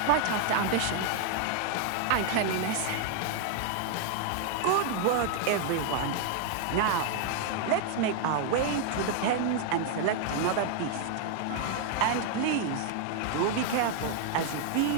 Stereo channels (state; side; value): different; both; correlation 0.00